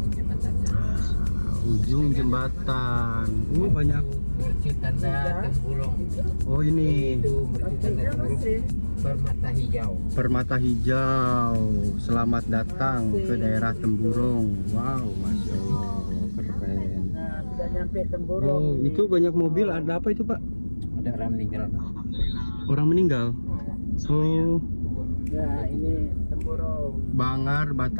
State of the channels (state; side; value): inverted; both; correlation -1.00